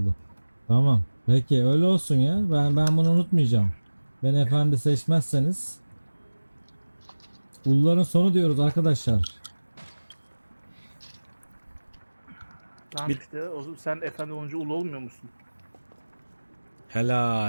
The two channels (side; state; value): both; inverted; correlation -1.00